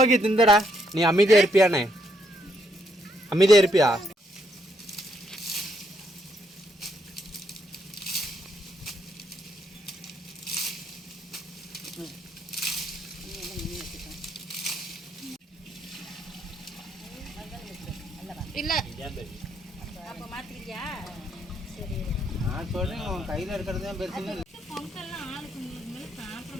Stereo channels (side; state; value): both; normal; correlation 0.74